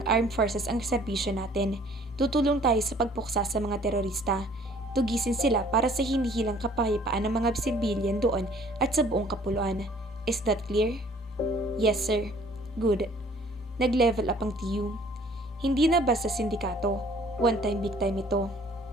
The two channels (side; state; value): both; normal; correlation 0.55